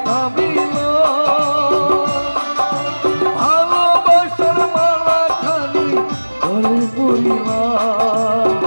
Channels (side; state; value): both; inverted; correlation -1.00